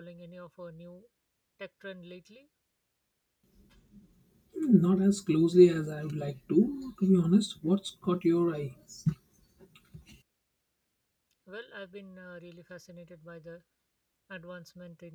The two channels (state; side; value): identical; both; correlation 1.00